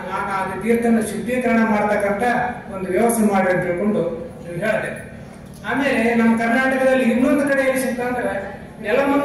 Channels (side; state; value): both; identical; correlation 1.00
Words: ಅದು ತೀರ್ಥನ ಶುದ್ಧೀಕರಣ ಮಾಡತಕ್ಕಂತ ಒಂದು ವ್ಯವಸ್ಥೆ ಮಾಡಿ ಅಂತ ತಿಳ್ಕೊಂಡು ಹೇಳಿದೆ. ಆಮೇಲೆ ನಮ್ಮ ಕರ್ನಾಟಕದಲ್ಲಿ ಇನ್ನೊಂದು ಕಡೆ ಎಲ್ಲಿ ಸಿಗ್ತಾ ಅಂದ್ರೆ